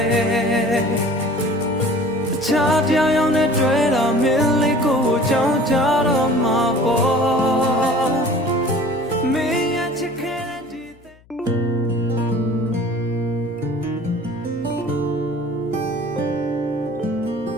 ယ်အခြားတရားရောက်နဲ့တွေ့တာမင်းလေးကိုကြောင်းကြတော့မှာပေါ့မင်းရဲ့ချစ်ခဲ့တဲ့ဒီ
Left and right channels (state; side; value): noise; left; hum, 28 dB below the sound